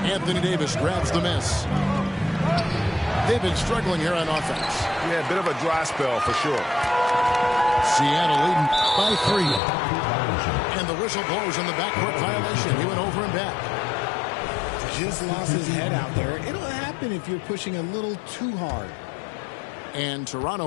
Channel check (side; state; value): right; drops out; at 9.6 s